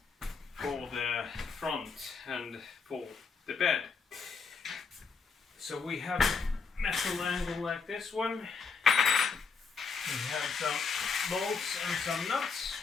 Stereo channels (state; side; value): quieter; right; 5.3 dB